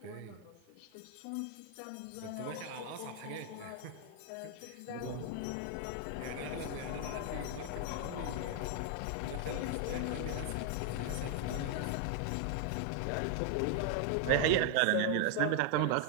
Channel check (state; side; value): different; both; correlation 0.00